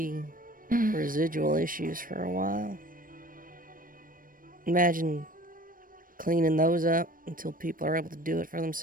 residual issues for a while. Imagine cleaning those up until people are able to do it for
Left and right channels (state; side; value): late; left; 0.40 ms